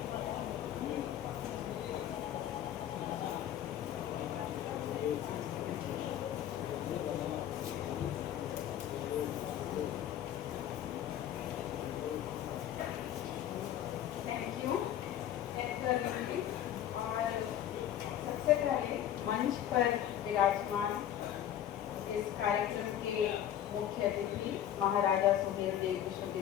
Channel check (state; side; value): quieter; right; 11.0 dB